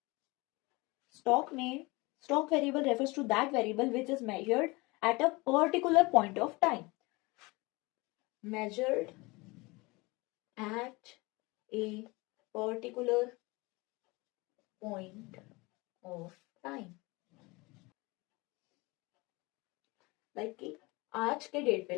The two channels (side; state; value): right; quieter; 24.4 dB